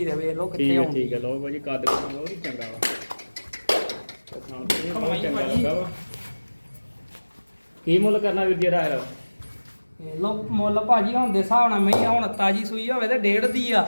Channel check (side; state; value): both; inverted; correlation -1.00